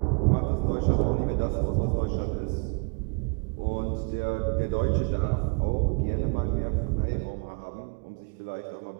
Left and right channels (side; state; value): left; quieter; 35.5 dB